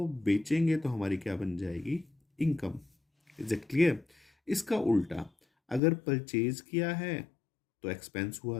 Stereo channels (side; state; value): right; drops out; at 5.8 s